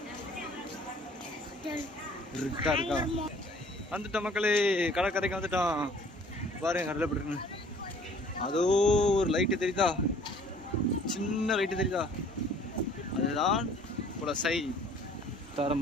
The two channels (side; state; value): both; normal; correlation 0.54